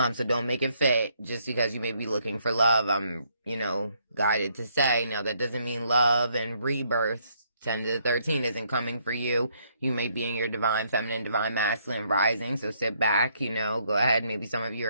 So don't make it fit just because you may be looking for love. I'm, guided to say, now that doesn't mean love and rebirth 10 to 13 isn't coming for you. You may be in your divine feminine, divine masculine rising, so sit back, go ahead. Maybe some of you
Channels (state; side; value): inverted; both; correlation -0.71